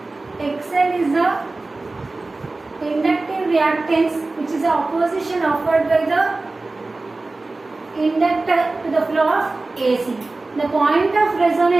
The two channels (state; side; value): quieter; left; 3.3 dB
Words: XL is the inductive reactance, which is the opposition offered by the inductor to the flow of AC. The point of